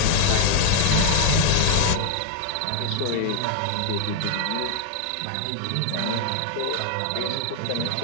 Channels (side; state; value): both; different; correlation 0.00